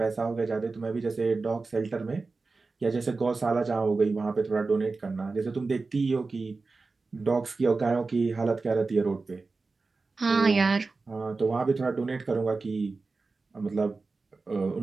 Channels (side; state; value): left; quieter; 3.9 dB